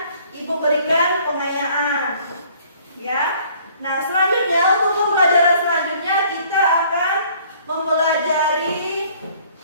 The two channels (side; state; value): both; inverted; correlation -0.57